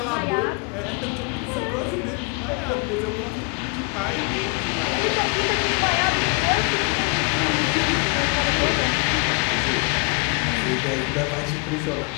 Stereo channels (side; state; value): right; quieter; 34.5 dB